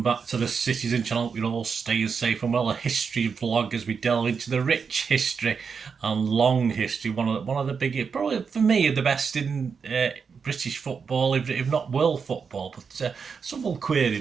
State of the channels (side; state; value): left; quieter; 5.9 dB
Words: to the Citizen channel. We're all staying safe and well. A history vlog as we delve into the rich history and long history. One of the biggest, probably for me, the best in British football, if not world football. But some will query